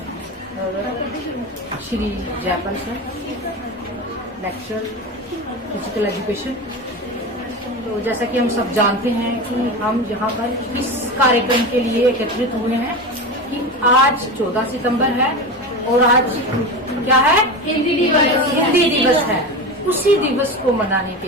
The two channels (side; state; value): both; normal; correlation 0.24